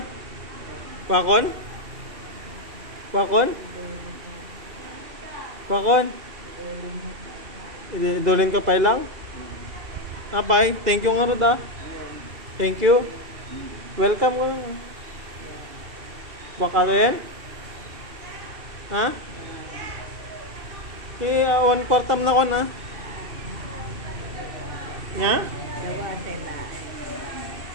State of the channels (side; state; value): left; late; 2.7 ms